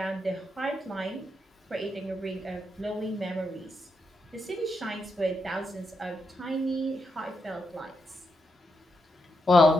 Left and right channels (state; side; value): normal; both; correlation 0.83